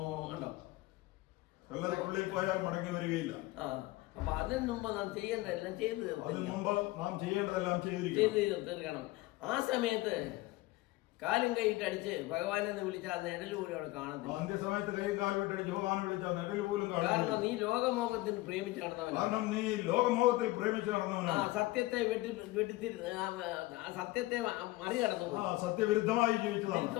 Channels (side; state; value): right; quieter; 19.4 dB